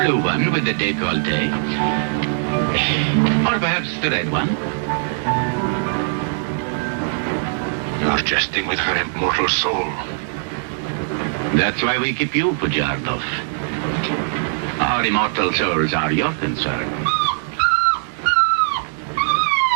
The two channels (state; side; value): silent; left; digital silence